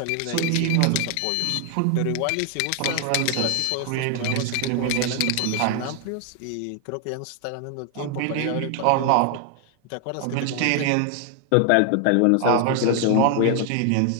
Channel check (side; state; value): both; different; correlation 0.00